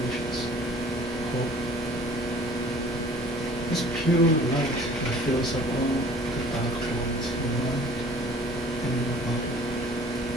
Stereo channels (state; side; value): normal; both; correlation 0.49